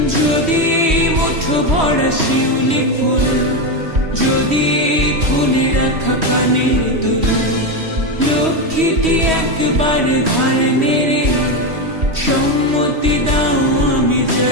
যদি এই মুঠো ভরা শিউলি ফুল, যদি এই খুলে রাখা কানের দুল, লক্ষ্মীটি একবার ঘাড় নেড়ে সম্মতি দাও আমি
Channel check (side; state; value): left; late; 3.1 ms